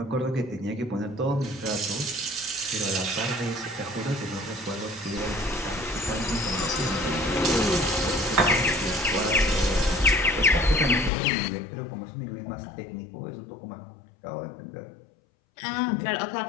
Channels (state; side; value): drops out; right; at 11.1 s